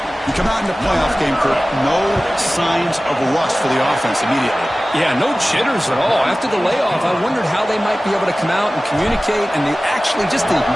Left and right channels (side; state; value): both; normal; correlation 0.97